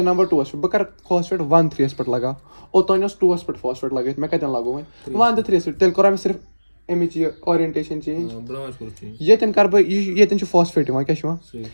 نمبر 2 پٮ۪ٹھ بہٕ کرٕ فاسفیٹ 1 3 پٮ۪ٹھ لگاو اوٚتانۍ اوس 2 پٮ۪ٹھ فاسفیٹ لگٲیِتھ مےٚ کَتٮ۪ن لگوو وۄنۍ 1 تہٕ 3 پٮ۪ٹھ تیٚلہِ کوٚرا مےٚ صرف اَمِچ یہِ اورینٹیشن چینج ییٚتٮ۪ن کرٕ بہٕ ییٚتٮ۪ن چھُ فاسفیٹ یِوان کیاہ چھُ یِوان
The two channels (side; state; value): both; inverted; correlation -1.00